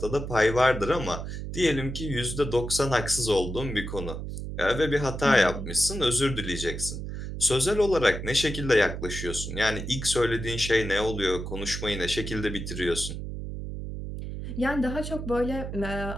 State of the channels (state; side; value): noise; right; hum, 6 dB below the sound